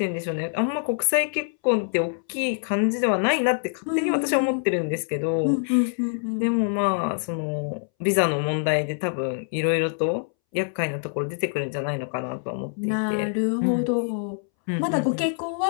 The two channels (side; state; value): right; silent; 62 dB below the other